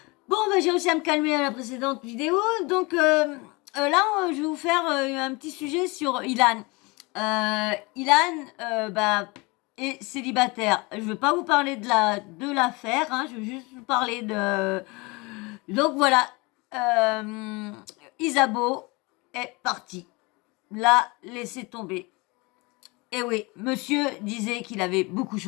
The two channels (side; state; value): right; quieter; 26.1 dB